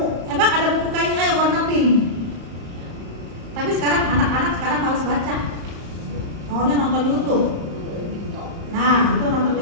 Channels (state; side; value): late; left; 35 ms